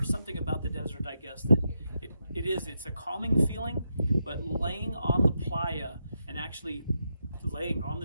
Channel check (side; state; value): both; inverted; correlation -0.84